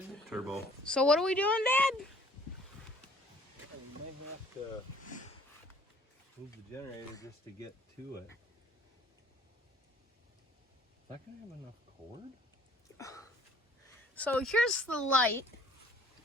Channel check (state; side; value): normal; both; correlation 0.57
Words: turbo. So what are we doing, Dad? We might have to move the generator just to get to it. Is that gonna have enough cord? So here's the light